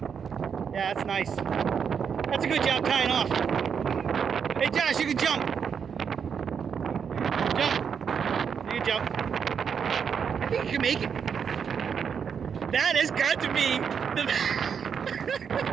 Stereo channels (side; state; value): left; quieter; 7.0 dB